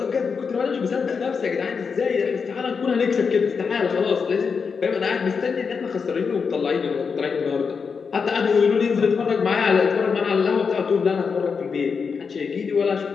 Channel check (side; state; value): right; quieter; 5.6 dB